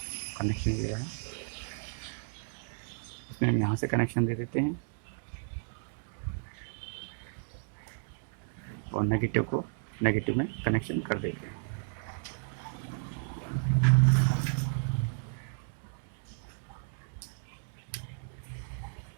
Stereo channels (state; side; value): silent; left; 56 dB below the other